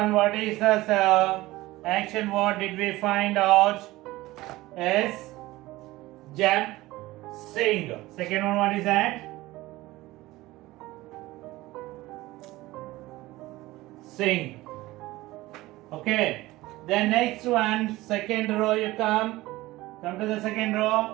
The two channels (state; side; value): quieter; left; 18.5 dB